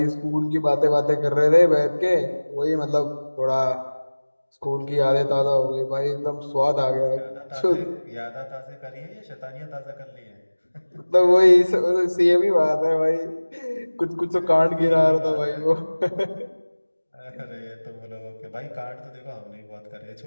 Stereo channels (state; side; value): inverted; both; correlation -1.00